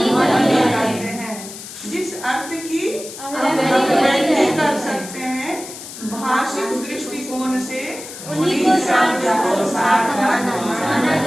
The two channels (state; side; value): noise; left; hiss, 13 dB below the sound